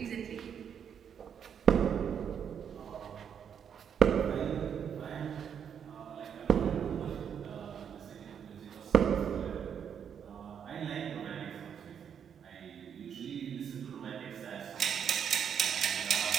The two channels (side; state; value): left; quieter; 8.0 dB